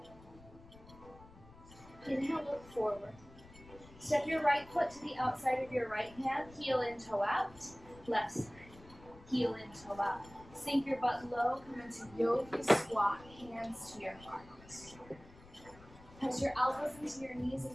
Inhale, look forward. Step your right foot to the outside of your right hand, heel in, toe out, left side. Heel in, toe out. Sink your butt low, come into yogi squat, hands to your heart. Press your elbows into your knees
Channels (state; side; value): noise; left; rumble, 21 dB below the sound